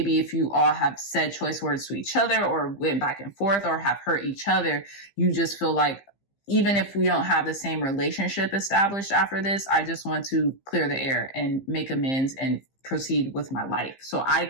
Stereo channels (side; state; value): right; late; 15 ms